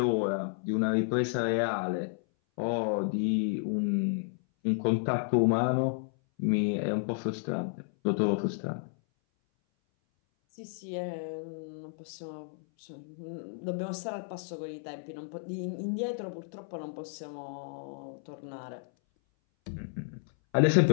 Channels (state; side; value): silent; right; 57 dB below the other